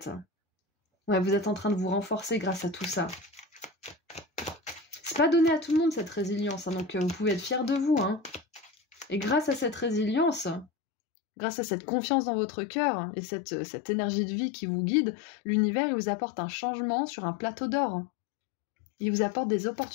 Ouais, vous êtes en train de vous renforcer grâce à tout ça. C'est pas donné à tout le monde cette résilience, hein, donc vous pouvez être fiers de vous. Hein. Et grâce à cette résilience, grâce à cette confiance dans votre cœur et cette énergie de vie qui vous guide, l'univers il vous apporte un changement sur un plateau d'or. Il vous apporte des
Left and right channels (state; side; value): drops out; right; at 10.7 s